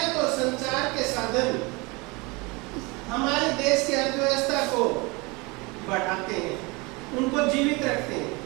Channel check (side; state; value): left; quieter; 26.5 dB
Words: और संचार के साधन हमारे देश की अर्थव्यवस्था को बढ़ाते हैं, उनको जीवित रखते हैं।